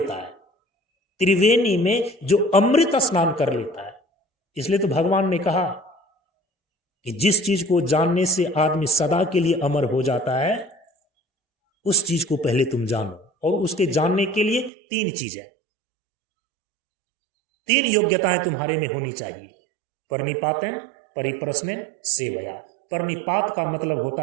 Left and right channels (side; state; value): left; drops out; at 14.7 s